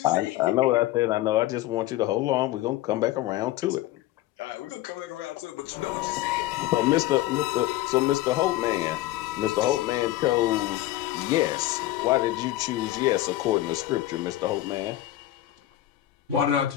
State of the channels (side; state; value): right; quieter; 15.3 dB